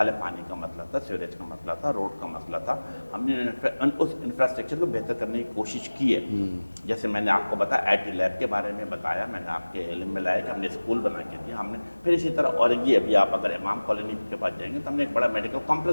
ہے پانی کا مسئلہ تھا، سیوریج کا مسئلہ تھا، روڈ کا مسئلہ تھا، ہم نے اس انفراسٹرکچر کو بہتر کرنے کی کوشش کی ہے. جیسے میں نے آپ کو بتایا IT لیب کے بارے میں بتایا، میں نے آپ کے علم میں لایا کہ ہم نے اسکول بنا کے دیا. ہم نے پھر اسی طرح اورنگی ابھی آپ اگر امام کالونی کے پاس جائیں گے تو ہم نے ایک بڑا میڈیکل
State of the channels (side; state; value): both; inverted; correlation -1.00